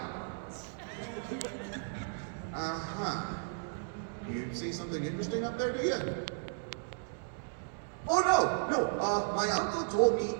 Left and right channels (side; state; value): left; silent; digital silence